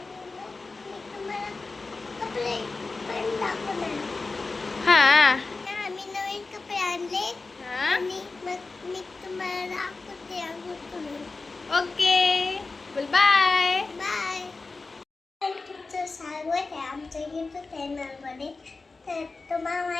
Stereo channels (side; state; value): right; quieter; 3.8 dB